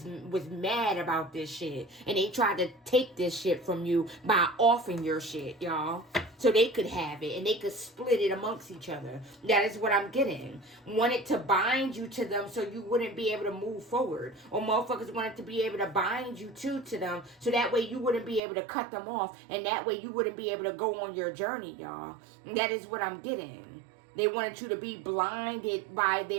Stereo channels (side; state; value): left; drops out; at 18.4 s